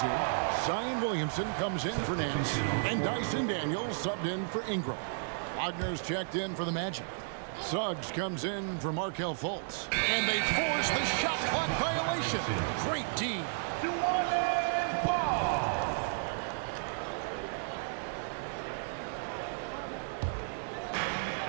here. Zion Williamson comes in for Nance. And Dyson Daniels subbed in for Ingram. Wagner's checked in for the Magic. Suggs comes in for Markelle Fultz. And they force the shot clock violation. Great D. New Orleans ball.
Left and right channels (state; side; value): silent; left; digital silence